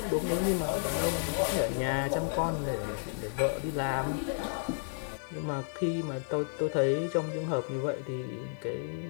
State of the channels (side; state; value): right; silent; 56 dB below the other